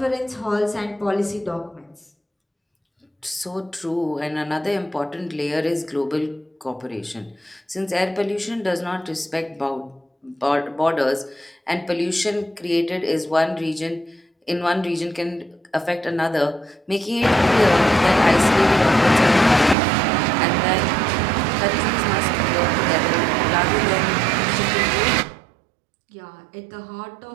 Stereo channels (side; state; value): left; drops out; at 19.8 s